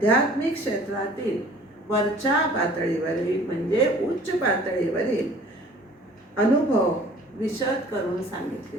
क्षेत्रातील वरच्या पातळीवरील म्हणजे उच्च पातळीवरील अनुभव विशद करून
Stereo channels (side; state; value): both; normal; correlation 0.50